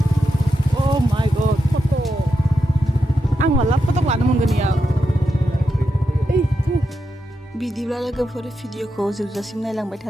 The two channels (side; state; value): both; normal; correlation 0.87